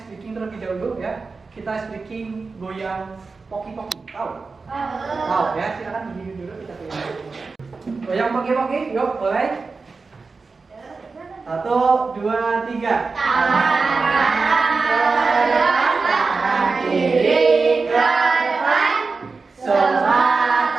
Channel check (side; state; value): left; quieter; 4.3 dB